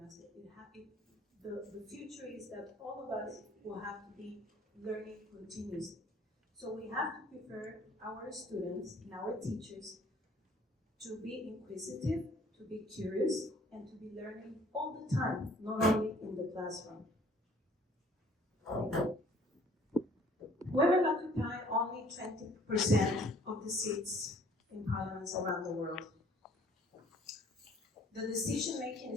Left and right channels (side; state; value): both; normal; correlation 0.56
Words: master. The future is that all of us will have to be learning continuously. So we have to prepare our students and our teachers to be inquisitive, to be curious, and to be learning all the time, not only in the classroom. Women occupy only 20% of the seats in parliaments around the world. The decision making